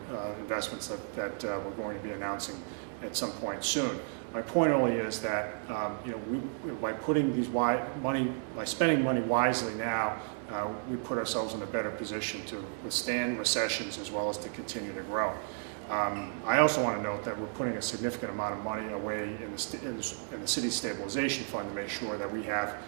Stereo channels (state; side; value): silent; left; 56 dB below the other